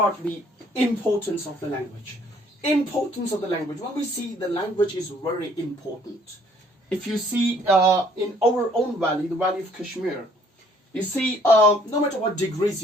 the importance of the language. Importance of the language. When we see the language is very important. If you see in our own valley, the valley of Kashmir, you see no matter what degrees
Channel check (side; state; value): both; normal; correlation 0.61